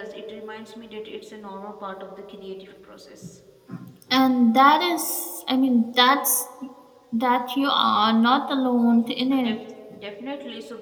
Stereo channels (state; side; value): identical; both; correlation 1.00